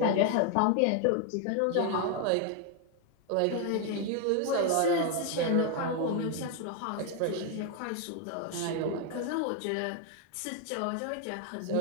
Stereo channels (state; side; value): different; both; correlation 0.01